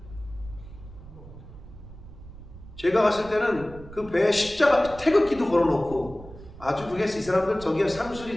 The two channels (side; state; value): right; noise; rumble, 16 dB below the sound